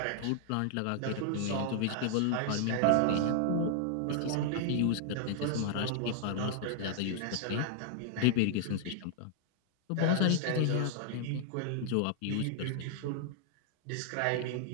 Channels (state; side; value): different; both; correlation -0.01